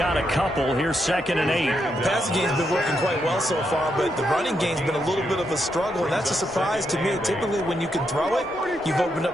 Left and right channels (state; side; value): normal; both; correlation 0.81